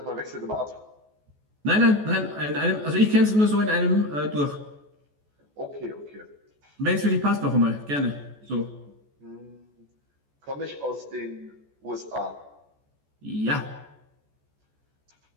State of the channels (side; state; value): left; late; 14 ms